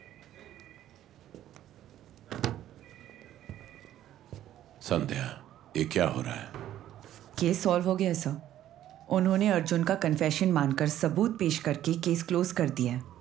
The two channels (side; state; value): left; quieter; 12.3 dB